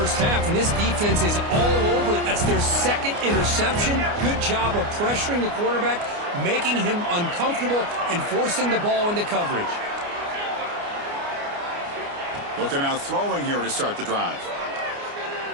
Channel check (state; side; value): late; left; 29 ms